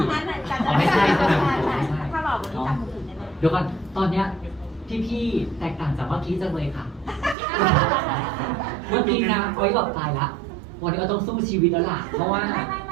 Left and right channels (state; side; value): drops out; left; at 7.4 s